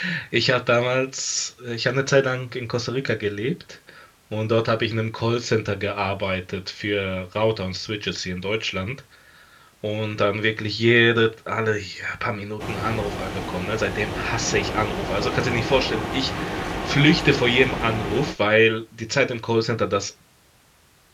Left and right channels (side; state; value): both; identical; correlation 1.00